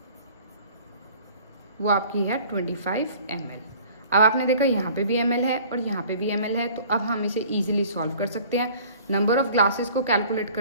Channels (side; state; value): both; inverted; correlation -0.50